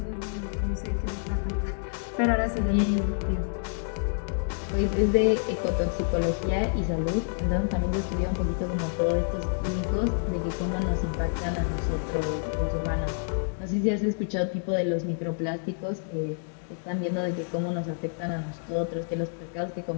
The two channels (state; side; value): silent; right; digital silence